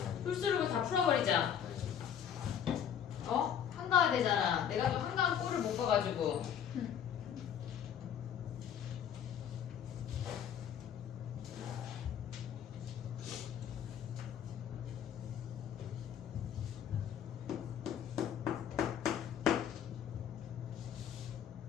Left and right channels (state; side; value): quieter; right; 9.0 dB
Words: 풀스루를 다 풀어버리자. 어? 한가해야 되잖아. 내가 또 한가한 꼴을 못 봐가지고.